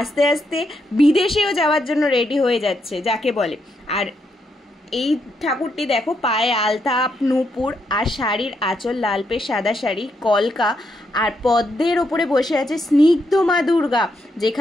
আস্তে বিদেশেও যাওয়ার জন্য রেডি হয়ে যাচ্ছে যাকে বলে। আর এই ঠাকুরটি দেখো, পায়ে আলতা, নূপুর, আর শাড়ির আঁচল লালপে সাদা শাড়ি, কলকা, আর পদ্মের ওপরে বসে আছে স্নিগ্ধ মা দুর্গা,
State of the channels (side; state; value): both; normal; correlation 0.79